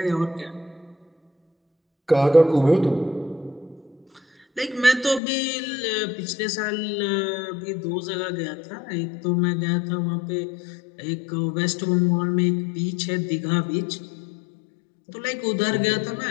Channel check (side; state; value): right; drops out; at 5.2 s